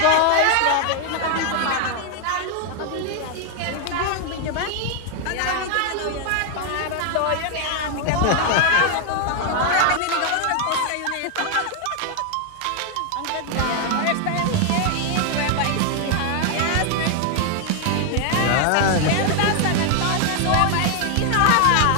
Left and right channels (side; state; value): both; different; correlation 0.00